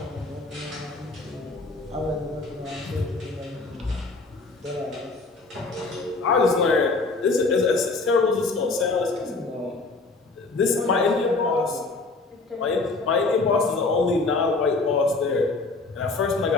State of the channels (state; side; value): quieter; right; 3.6 dB